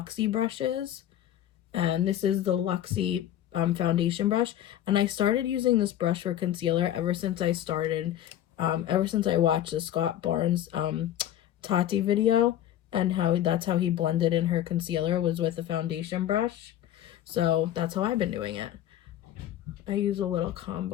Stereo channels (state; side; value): quieter; right; 11.9 dB